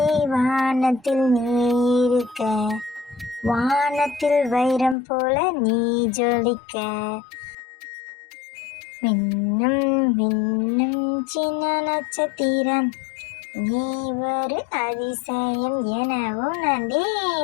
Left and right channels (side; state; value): right; drops out; at 5.0 s